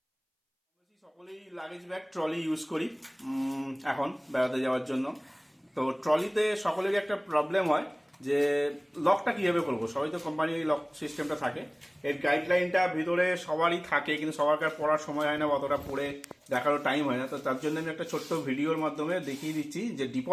সকলেই লাগেজ ব্যাগ ট্রলি ইউজ করি এখন বেড়াতে যাওয়ার জন্য। তো ট্রলিতে সকলেরই একটা প্রবলেম হয় যে লকটা কীভাবে করবো। সবাই তো কোম্পানির লক সিস্টেমটা থাকে, এর গাইডলাইনটা ভিতরে সবারই থাকে, কিন্তু সবার পড়ার সময় হয় না, অতটা পড়ে দেখারও টাইম হয় না। তো তার জন্য আমি একটা ছোট্ট ভিডিওর মাধ্যমে দেখিয়ে দিচ্ছি যে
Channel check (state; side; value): identical; both; correlation 1.00